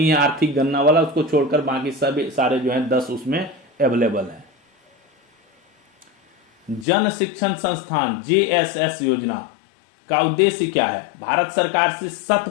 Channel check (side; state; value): right; drops out; at 6.9 s